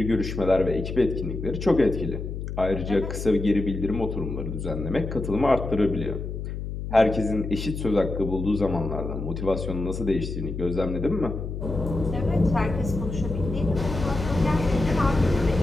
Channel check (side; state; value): left; noise; hum, 6 dB below the sound